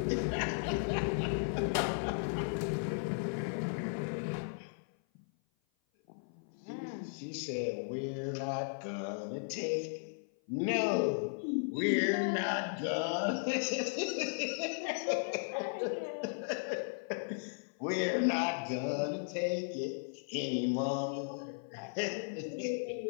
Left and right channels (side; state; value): right; silent; 54 dB below the other